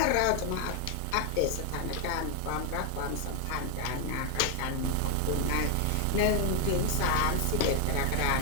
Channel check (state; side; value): different; both; correlation 0.00